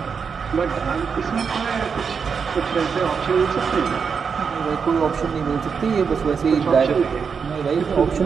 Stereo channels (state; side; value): quieter; left; 6.0 dB